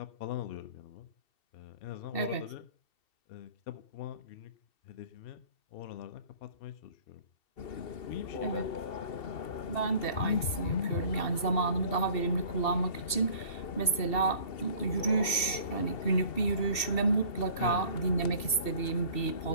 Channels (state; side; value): late; right; 2.7 ms